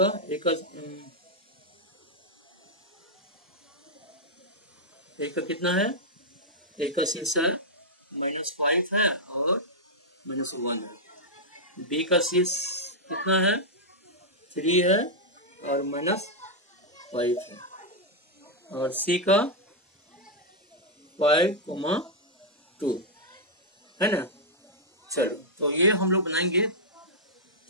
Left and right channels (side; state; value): both; normal; correlation -0.05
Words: कितना है, एक का शीर्ष है -5 है और -1 है। बी का शीर्ष कितना है, 3 है और -5 है। और सी का 5,2 है ना। चलो तो ये हम लोग बनाएंगे